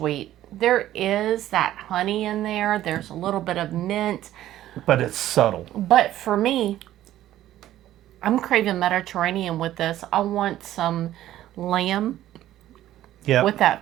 There is that honey in there. There's a little bit of mint. But it's subtle. But for me, I'm craving Mediterranean with this. I want some lamb with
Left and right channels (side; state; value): left; quieter; 13.4 dB